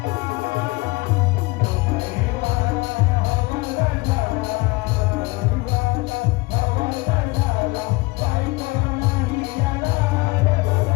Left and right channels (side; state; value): right; quieter; 23.3 dB